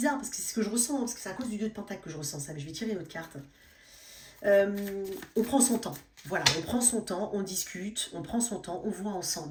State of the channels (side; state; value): both; identical; correlation 1.00